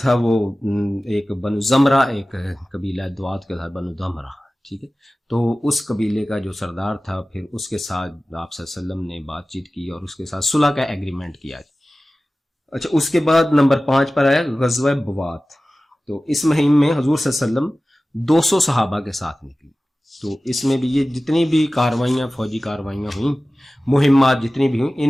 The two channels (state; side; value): normal; both; correlation 0.97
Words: تھا وہ ایک بنو زمرہ، ایک قبیلہ دوات کے تھا بنو دمرہ، ٹھیک ہے، تو اس قبیلے کا جو سردار تھا پھر اس کے ساتھ آپ صلی اللہ علیہ وسلم نے بات چیت کی اور اس کے ساتھ صلح کا ایگریمنٹ کیا۔ اچھا، اس کے بعد نمبر 5 پر آیا غزوہ بوات، تو اس مہم میں حضور صلی اللہ علیہ وسلم 200 صحابہ کے ساتھ نکلی۔ تو اس میں بھی یہ جتنی بھی کاروائیاں، فوجی کاروائیاں ہوئیں، مہمات جتنی بھی ہوئیں،